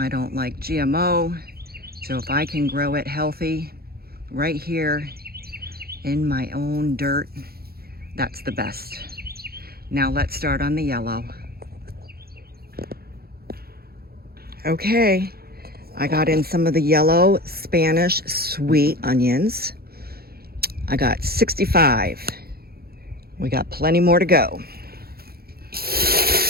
don't like GMO. So if I can grow it healthy right here in my own dirt, that's the best. Now let's start on the yellow. Okay, I got in some of the yellow Spanish sweet onions. I got 65. We got plenty more to go.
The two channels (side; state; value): left; late; 0.45 ms